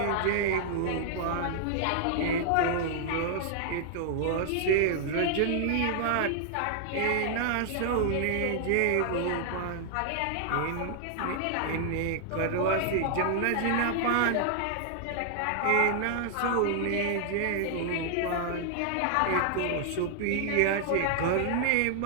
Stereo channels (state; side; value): different; both; correlation -0.01